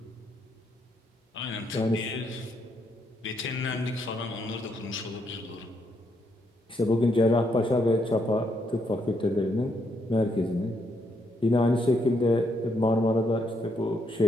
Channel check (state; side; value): normal; both; correlation 0.75